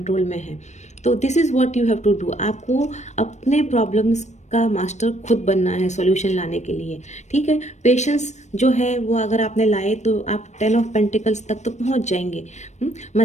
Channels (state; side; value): late; right; 0.34 ms